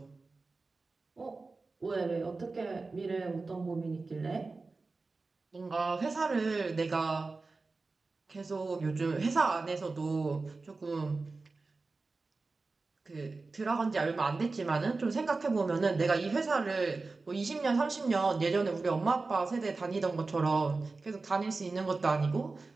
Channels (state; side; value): quieter; left; 3.8 dB